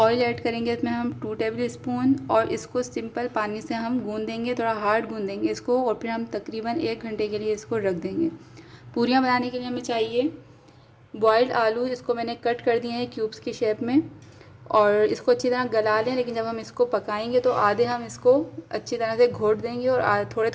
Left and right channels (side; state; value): both; identical; correlation 1.00